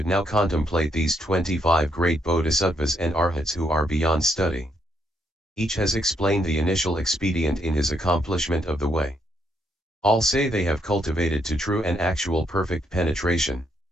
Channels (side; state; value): both; normal; correlation 0.74